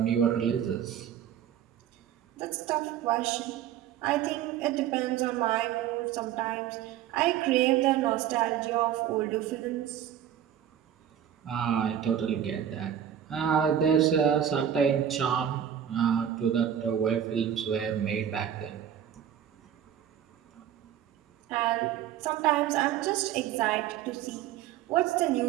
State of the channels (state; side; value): quieter; left; 10.0 dB